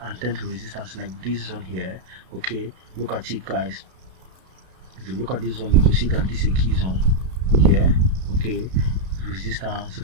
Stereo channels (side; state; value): left; late; 32 ms